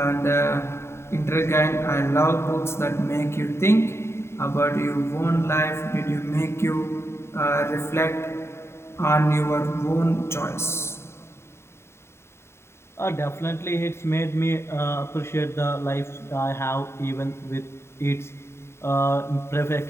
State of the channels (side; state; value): right; late; 0.12 ms